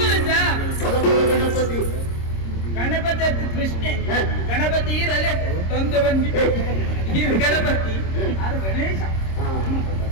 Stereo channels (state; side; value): late; right; 26 ms